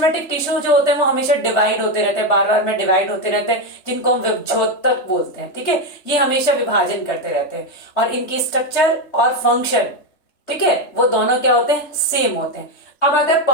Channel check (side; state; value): right; late; 3.3 ms